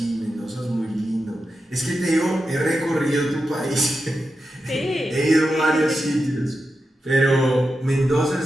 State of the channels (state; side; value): normal; both; correlation 0.89